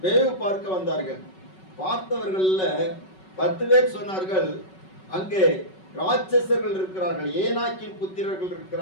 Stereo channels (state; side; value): late; right; 5.3 ms